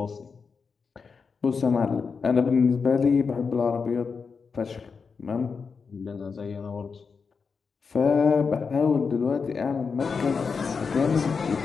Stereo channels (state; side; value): quieter; right; 5.3 dB